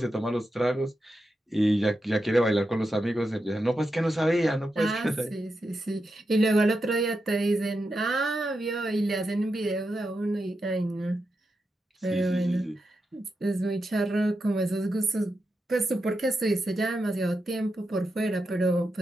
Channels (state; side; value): normal; both; correlation 0.87